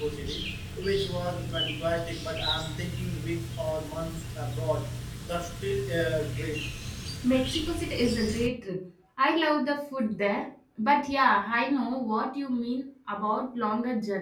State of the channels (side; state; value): both; identical; correlation 1.00